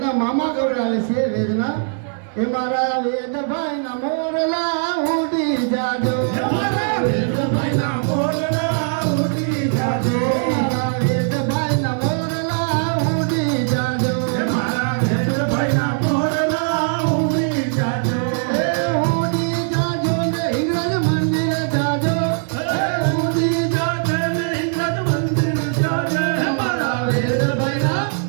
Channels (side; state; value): left; silent; 63 dB below the other